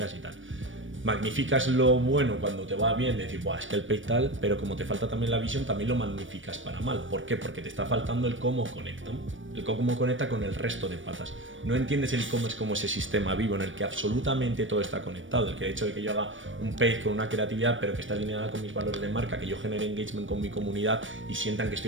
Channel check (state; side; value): late; left; 0.56 ms